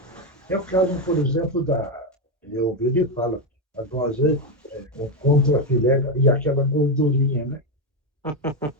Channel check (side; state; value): both; normal; correlation 0.07